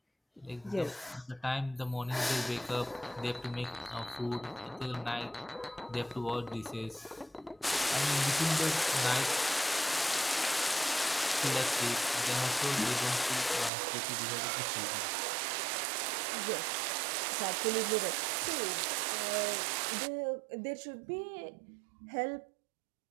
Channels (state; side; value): drops out; left; at 13.7 s